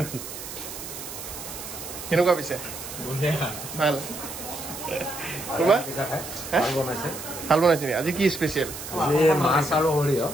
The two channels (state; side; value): noise; right; hiss, 10 dB below the sound